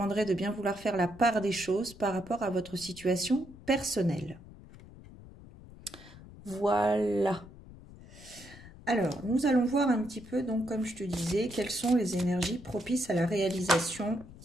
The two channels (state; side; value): noise; left; rumble, 18 dB below the sound